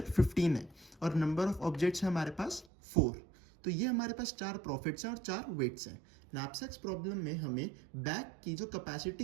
15 है और नंबर ऑफ ऑब्जेक्ट्स है हमारे पास 4। तो ये हमारे पास 4 प्रॉफिट्स हैं और 4 वेट्स हैं। नैपसेक्स प्रॉब्लम में हमें बैग की जो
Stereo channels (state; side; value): drops out; left; at 2.7 s